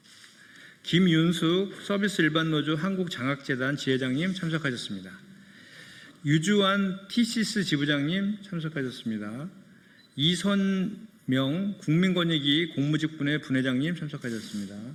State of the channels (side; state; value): both; identical; correlation 1.00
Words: 김윤숙 서비스 일반노조 한국장학재단 지회장님 참석하셨습니다. 유주환 TCS 지부장님 참석하셨습니다. 이선명 국민권익위 공무직분회 분회장님 참석하셨습니다.